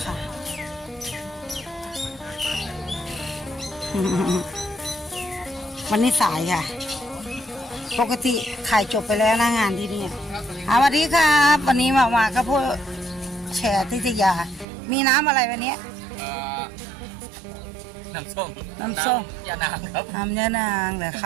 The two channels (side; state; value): left; drops out; at 14.7 s